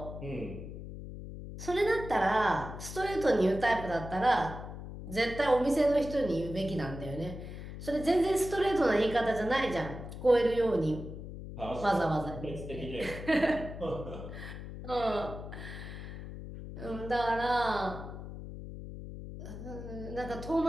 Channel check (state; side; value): noise; left; hum, 10 dB below the sound